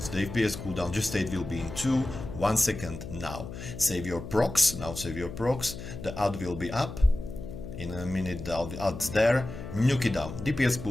the FPS cooldown just state will be in 1 second now. Save your procs, now save your procs, the ad will be up, in a minute the ad's there, nuke it down, DPS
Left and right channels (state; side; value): noise; left; hum, 10 dB below the sound